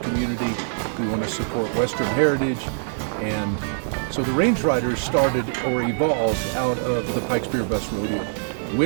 we want to support Western heritage, and so the Range Riders started or evolved out of the Pikes Peak Bust Rodeo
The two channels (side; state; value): left; silent; 63 dB below the other